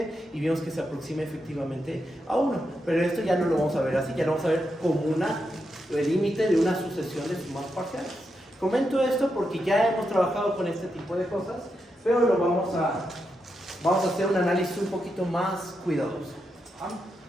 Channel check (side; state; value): both; normal; correlation 0.85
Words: y vimos que se aproxima efectivamente a 1. Pero esto ya no lo vamos a ver así, ya lo vamos a ver como el límite de una sucesión de sumas parciales. Comento esto porque ya hemos trabajado con este tipo de cosas, pero lo vamos a hacer un análisis un poquito más cuidadoso.